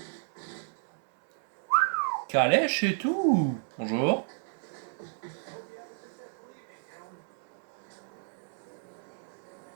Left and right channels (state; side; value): silent; left; 56 dB below the other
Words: Calèche et tout. Bonjour.